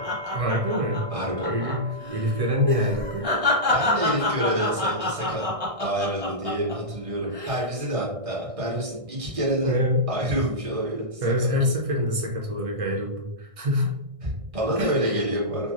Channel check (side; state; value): left; late; 1.6 ms